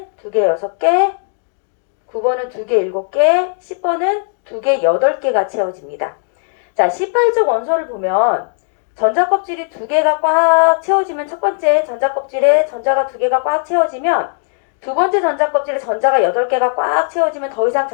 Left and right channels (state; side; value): silent; right; 63 dB below the other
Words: 2개, 6개. 9번은 2개, 7개. 10번은 2개, 8개가 채워집니다. 자, 18쪽 원소를 보면 전자 껍질이 2개가 꽉 채워지면 첫 번째 전자 껍질에 전자가 2개가 꽉 채워지면 두 번째 전자 껍질에 전자가 8개가 꽉 채워지면 더 이상